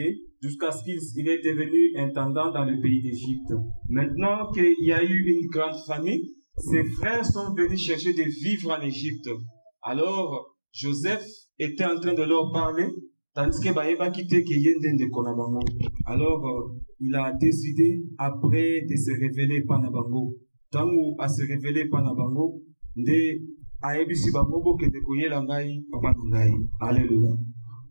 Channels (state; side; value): inverted; both; correlation -1.00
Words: jusqu'à ce qu'il est devenu intendant dans le pays d'Égypte. Maintenant qu'il y a eu une grande famine, ses frères sont venus chercher de vivre en Égypte. Alors, Joseph était en train de leur parler, tandis que Baïba quittait Keyenden de Konabango. Alors, il a décidé, après de se révéler Panabango, tant où à se révéler Panabango, de Aebisi Babobo que de Koyela Ngai, Papa Ngai. Alléluia.